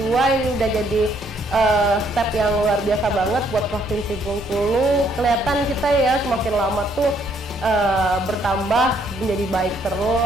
ini udah jadi step yang luar biasa banget buat Provinsi Bengkulu. Kelihatan kita ya semakin lama tuh bertambah menjadi baik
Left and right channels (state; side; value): normal; both; correlation 0.68